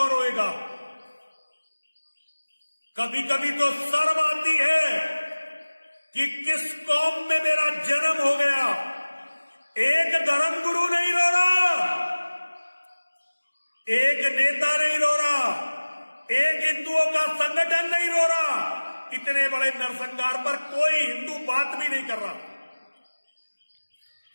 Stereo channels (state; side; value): inverted; both; correlation -1.00